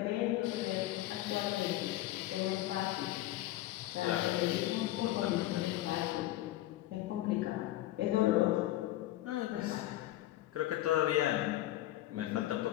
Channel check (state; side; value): quieter; right; 15.4 dB